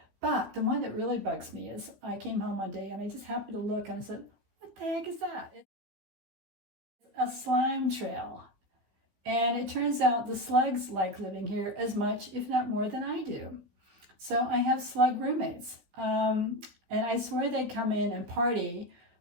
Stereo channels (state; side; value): late; left; 15 ms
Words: But the one that really bugs me is I came home one day and I just happened to look and I said, what the heck is that? It's a slime trail. And it turns out the slugs like living here as much, if not more, than I do. So I have slug roommates. And I swear they come in and party.